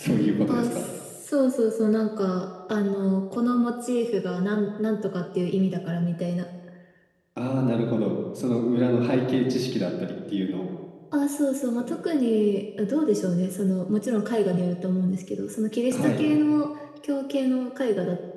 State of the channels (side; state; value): both; identical; correlation 1.00